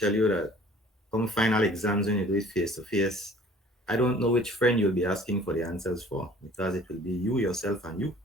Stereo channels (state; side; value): normal; both; correlation 0.52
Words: you that come final exams when you do it face to face, I don't know which friend you'll be asking for the answers for because it will be you, yourself, and you